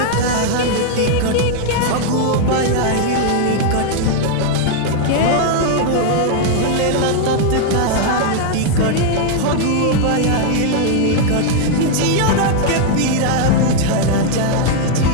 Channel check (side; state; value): both; different; correlation 0.00